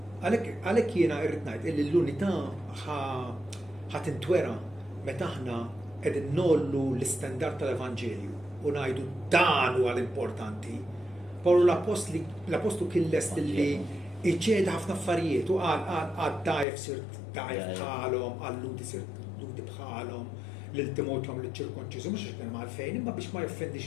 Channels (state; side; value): drops out; right; at 16.7 s